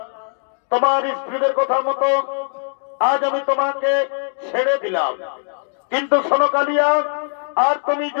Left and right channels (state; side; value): silent; right; digital silence